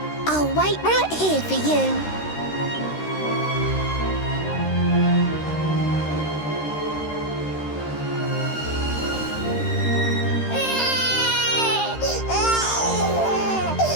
I'll wait right here for you.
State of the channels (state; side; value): late; right; 13 ms